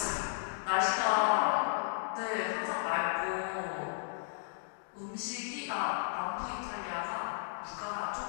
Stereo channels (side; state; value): right; silent; digital silence